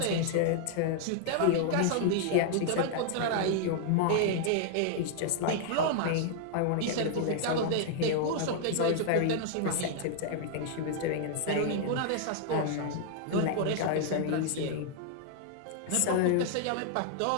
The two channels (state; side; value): different; both; correlation 0.00